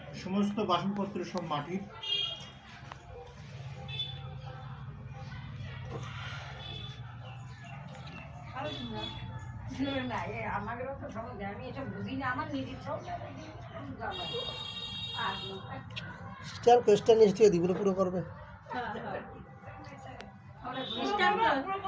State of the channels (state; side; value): identical; both; correlation 1.00